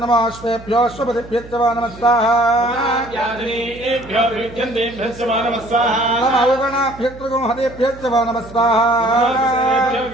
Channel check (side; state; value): right; noise; hum, 18 dB below the sound